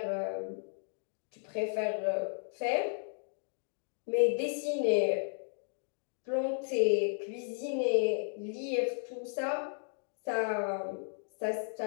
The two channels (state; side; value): silent; right; digital silence